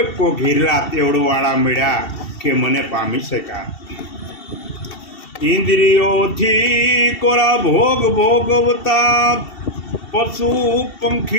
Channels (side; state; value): right; late; 2.7 ms